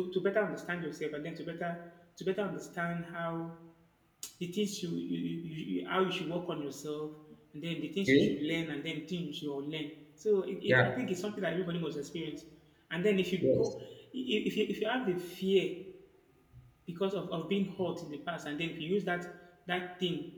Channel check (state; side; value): identical; both; correlation 1.00